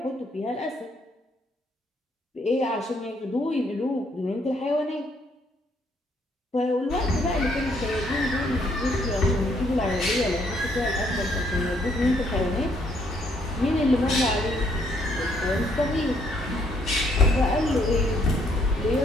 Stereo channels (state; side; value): normal; both; correlation 0.69